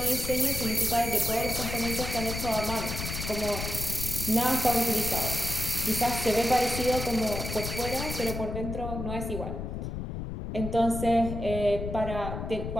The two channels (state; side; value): noise; left; rumble, 5 dB below the sound